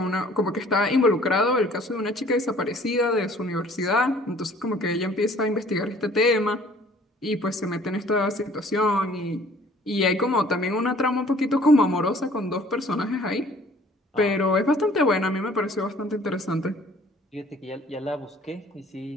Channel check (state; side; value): normal; both; correlation 0.54